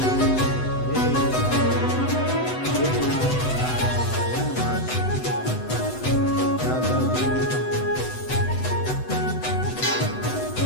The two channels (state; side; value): late; right; 7.9 ms